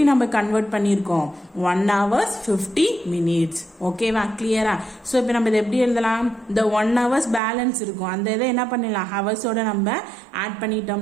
நம்ம கன்வெர்ட் பண்ணியிருக்கோம், 1 hours 50 minutes. ஓகேவா? கிளியரா? ஸோ இப்போ நம்ம இதை எப்படி எழுதலாம், இந்த 1 hours பேலன்ஸ் இருக்கும், அந்த இதை என்ன பண்ணிடலாம், ஹவர்ஸோட நம்ம ஆட்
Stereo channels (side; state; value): left; drops out; at 7.4 s